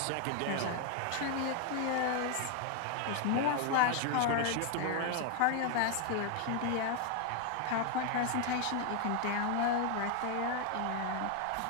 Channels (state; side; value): different; both; correlation 0.01